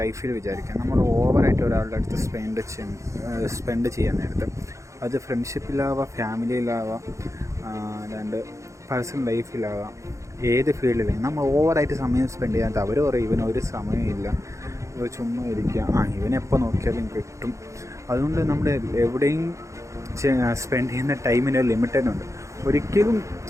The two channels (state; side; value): late; left; 0.15 ms